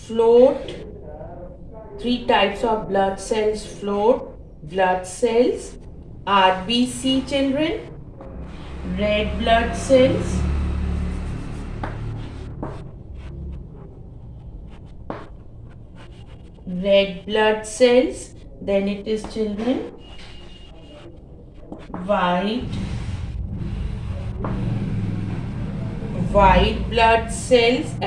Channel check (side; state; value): both; identical; correlation 1.00